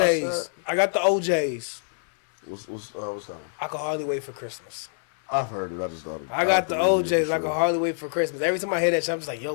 OJs. I got the OJs. What's that? I can hardly wait for Christmas. I've heard it. I just thought it. I got the thought it was OJs. for I can sure. hardly wait for Christmas. Every time I hear that shit, I'm just like,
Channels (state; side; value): silent; right; 61 dB below the other